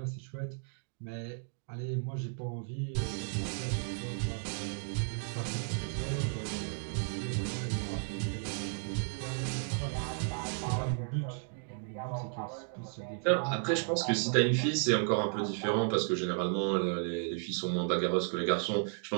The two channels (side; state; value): left; silent; 55 dB below the other